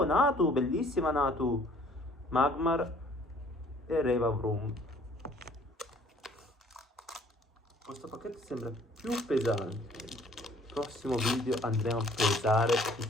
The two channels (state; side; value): normal; both; correlation 0.57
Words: Natu, bellissima Natu. Magmar e Revavroom. Questo pacchetto sembra più pesante. Nel prossimo video andremo a pesare i